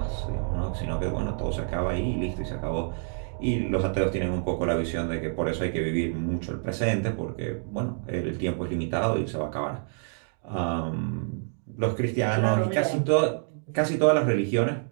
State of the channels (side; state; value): left; silent; 60 dB below the other